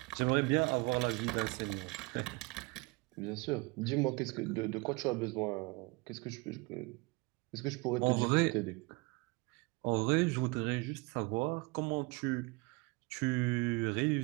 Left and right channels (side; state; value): left; quieter; 27.0 dB